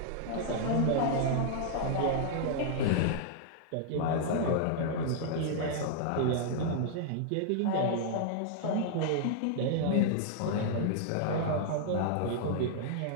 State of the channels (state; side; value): different; both; correlation -0.01